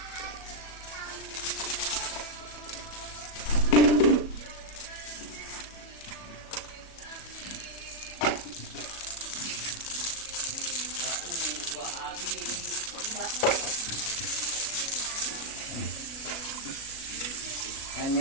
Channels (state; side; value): late; right; 37 ms